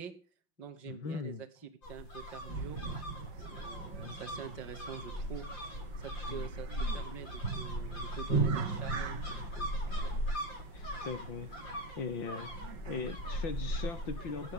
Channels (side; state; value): right; late; 5.7 ms